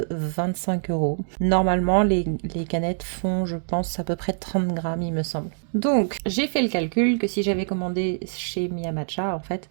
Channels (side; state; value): left; silent; digital silence